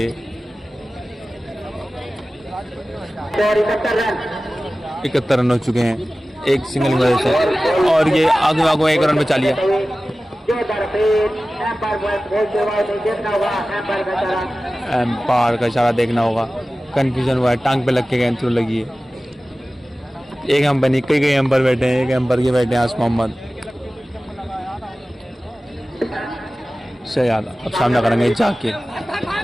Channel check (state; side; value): normal; both; correlation 0.96